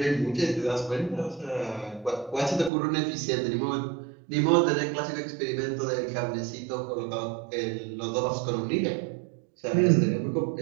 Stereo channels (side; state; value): left; drops out; at 2.7 s